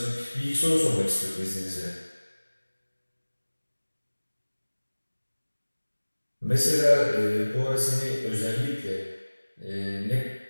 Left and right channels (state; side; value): inverted; both; correlation -1.00